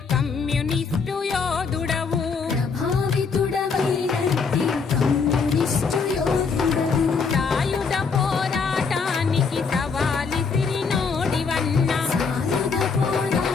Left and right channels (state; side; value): quieter; right; 5.2 dB